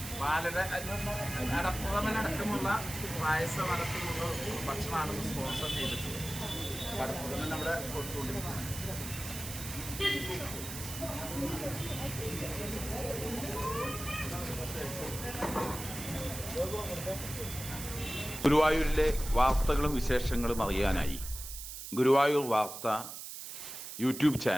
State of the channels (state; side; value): noise; right; hiss, 9 dB below the sound